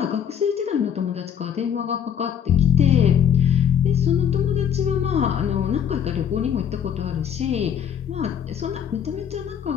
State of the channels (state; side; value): quieter; right; 8.7 dB